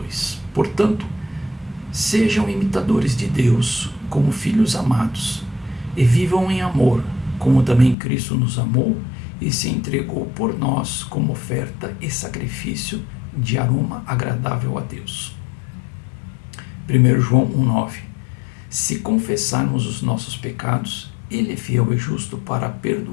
Portanto, sejam imitadores de Deus como filhos amados, e vivam em amor, como também Cristo nos amou e se entregou por nós como oferta e sacrifício de aroma agradável a Deus. 1 João 1,9. Se confessarmos os nossos pecados, Ele é fiel e justo para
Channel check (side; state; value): right; drops out; at 8.0 s